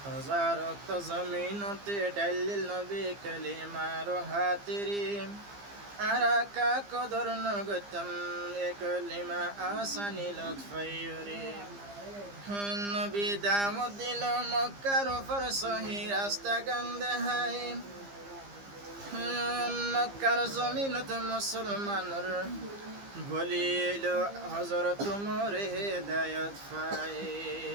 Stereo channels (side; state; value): left; late; 15 ms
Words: জমিনতে ডালিল নবী কলিমার হাতিরি আরাকা কদর নগতম এ কলিমা আসানি লতফাইরে নবী দামত দিল মক্কার উপর সহি রাস্তা গন্ধে হাই মক্কার জমিনত মুসলমানর বলিল হযরত মোরে হেদায়েত পাই